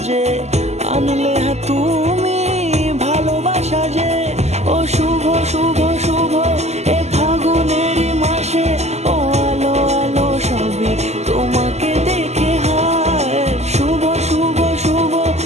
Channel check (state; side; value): late; left; 0.32 ms